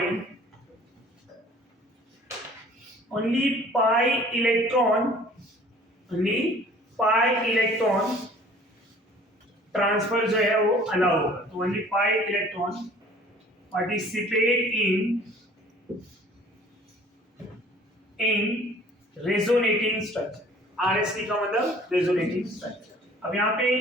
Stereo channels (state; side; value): normal; both; correlation 0.51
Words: only pi electron transfer जो है वो अलाउ होगा। तो only pi electron participate in resonating structure. RST का मतलब रेजोनेटिंग स्ट्रक्चर। अब यहाँ पे